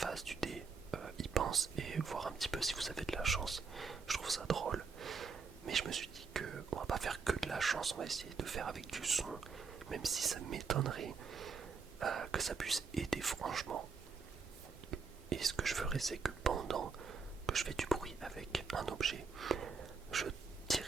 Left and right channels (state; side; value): quieter; left; 5.2 dB